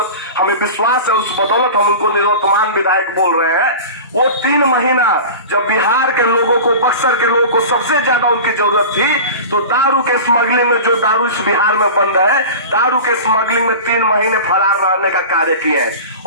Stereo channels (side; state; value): both; inverted; correlation -0.33